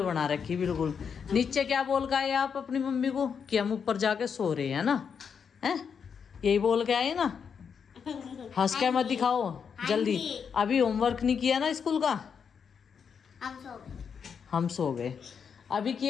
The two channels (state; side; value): quieter; right; 6.7 dB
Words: बना रखी बिल्कुल। नीचे क्या बोल के आए आप अपनी मम्मी को कि हम ऊपर जाके सो रहे हैं ना, हैं? यही बोल के आए ना, हंस के मत दिखाओ जल्दी। अभी होमवर्क नहीं किया ना स्कूल का? हम सो गए। अभी